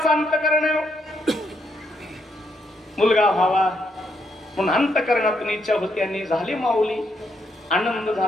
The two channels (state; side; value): normal; both; correlation 0.77